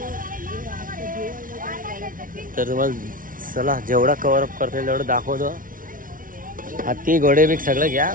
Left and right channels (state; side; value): late; left; 0.39 ms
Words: तर तुम्हाला चला जेवढा कव्हर अप करता येईल तेवढं दाखवतो. हत्ती घोडे बिग सगळं घ्या